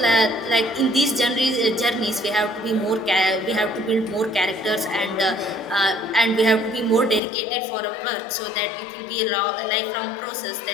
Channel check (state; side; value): drops out; right; at 7.2 s